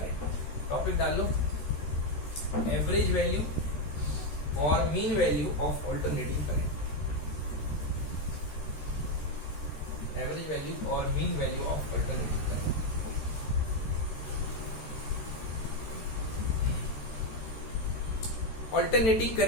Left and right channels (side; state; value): right; late; 13 ms